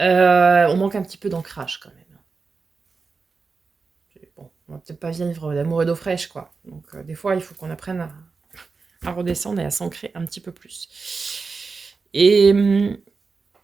manque un petit peu d'ancrage quand même. Bon, on va peut-être pas vivre d'amour et d'eau fraîche, quoi. Donc des fois, il faut qu'on apprenne à redescendre et à s'ancrer un petit peu plus. Et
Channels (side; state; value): left; quieter; 4.6 dB